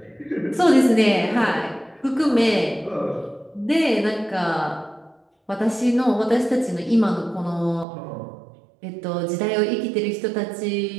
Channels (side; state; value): left; drops out; at 7.9 s